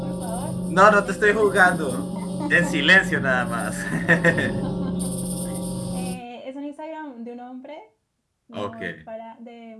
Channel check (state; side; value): identical; both; correlation 1.00